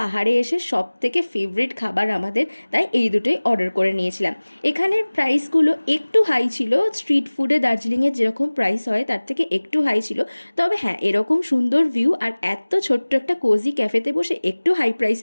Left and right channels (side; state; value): both; inverted; correlation -1.00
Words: এসে সব থেকে ফেভারিট খাবার আমাদের, তাই এই দুটোই অর্ডার করে নিয়েছিলাম। এখানের প্রাইসগুলো একটু হাই ছিল, স্ট্রিট ফুডে দার্জিলিংয়ের যেরকম প্রাইস হয় তার থেকে একটু হাই ছিল। তবে হ্যাঁ, এরকম সুন্দর ভিউ আর এত ছোট্ট একটা কোজি ক্যাফেতে বসে একটু হাই প্রাইস